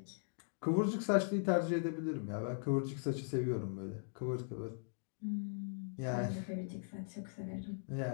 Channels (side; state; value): right; silent; digital silence